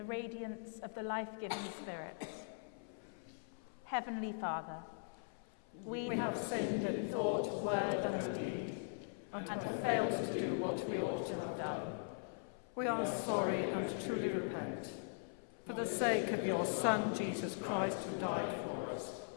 radiance of the life-giving Spirit. Heavenly Father, we have sinned in thought, word, and deed, and have failed to do what we ought to have done. We are sorry and truly repent. For the sake of your Son, Jesus Christ, who died for us,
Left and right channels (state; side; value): silent; right; 51 dB below the other